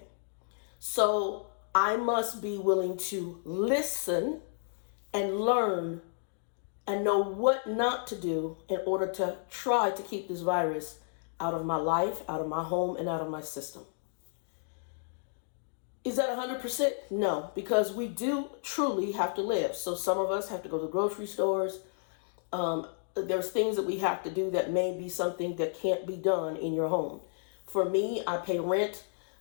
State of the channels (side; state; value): right; silent; digital silence